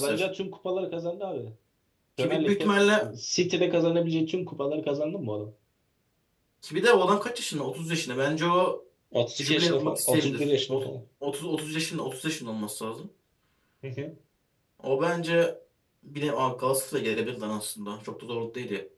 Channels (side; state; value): both; identical; correlation 1.00